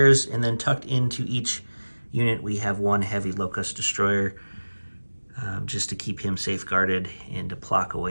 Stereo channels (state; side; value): inverted; both; correlation -1.00